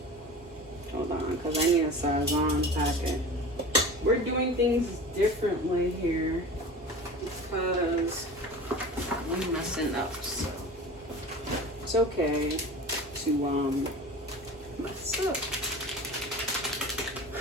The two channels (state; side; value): normal; both; correlation 0.35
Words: Hold on, because I need a Sazon packet. We're doing things differently here because we're messing up, so it's okay to mess up.